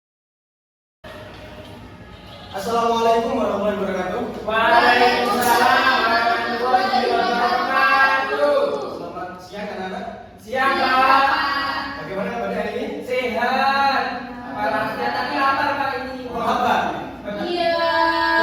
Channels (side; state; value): both; identical; correlation 1.00